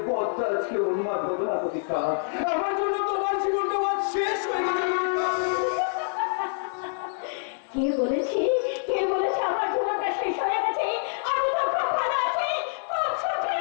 বদটা আজকে উন্মাদ হতো না প্রতীক্ষা। আমার জন্য তোমার জীবনটা শেষ হয়ে গেছে। কে বলেছে আমার জীবনটা শেষ হয়ে গেছে? আমি তো খুব ভালো আছি, খুব সুখে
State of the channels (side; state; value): right; silent; 61 dB below the other